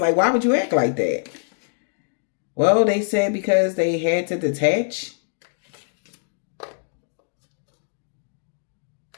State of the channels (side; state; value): right; silent; digital silence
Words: why would you act like that? Well, they said because they had to detach.